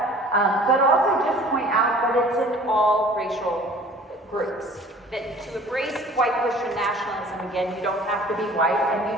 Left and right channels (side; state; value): both; normal; correlation 0.48